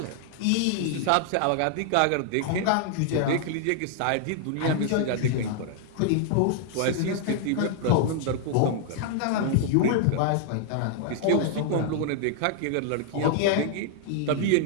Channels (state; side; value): different; both; correlation 0.00